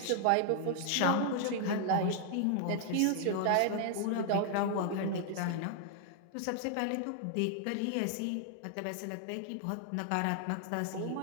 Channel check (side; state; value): both; different; correlation 0.00